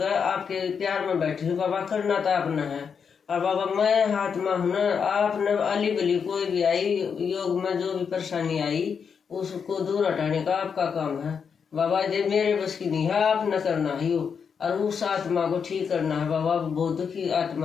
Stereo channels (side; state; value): right; quieter; 6.5 dB